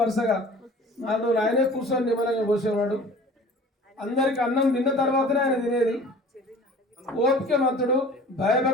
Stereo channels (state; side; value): normal; both; correlation 0.45